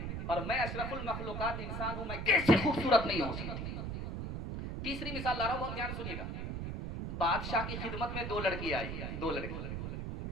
और मैं अशरफुल मखलूकात इंसान हूं, मैं कैसे खूबसूरत नहीं हो सकती? तीसरी मिसाल ला रहा हूं, बहुत ध्यान सुनिएगा। बादशाह की खिदमत में दो लड़की आई, दो लड़की,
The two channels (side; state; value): right; noise; rumble, 4 dB below the sound